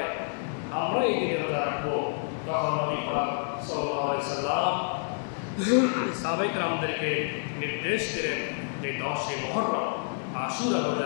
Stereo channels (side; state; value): right; silent; digital silence